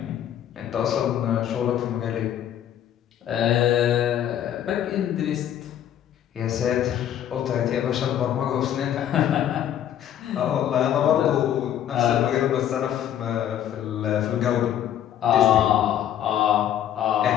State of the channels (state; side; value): quieter; right; 10.6 dB